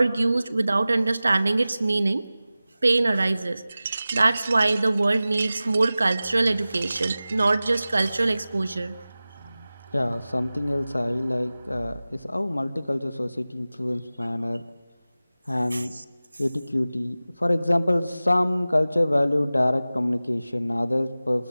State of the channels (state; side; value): inverted; both; correlation -0.97